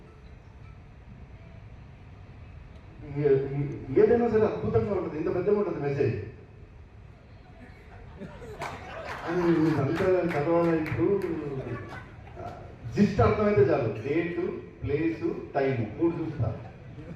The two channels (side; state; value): both; identical; correlation 1.00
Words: ఏదైనా సరే అద్భుతంగా ఉంటుంది, ఇంత పెద్దగా ఉంటుంది మెసేజ్. అని అంతా చదవాలి. ఇప్పుడు జిస్ట్ అర్థమైతే చాలు, డేటు, ప్లేసు, టైము 3 చూస్తారు.